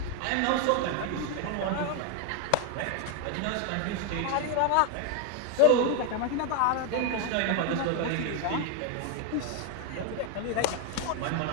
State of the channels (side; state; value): both; different; correlation 0.01